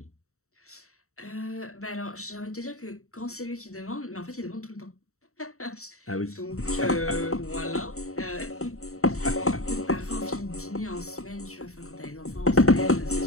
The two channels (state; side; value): late; right; 0.64 ms